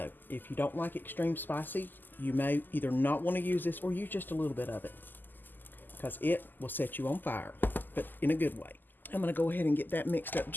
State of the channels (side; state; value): right; late; 0.089 ms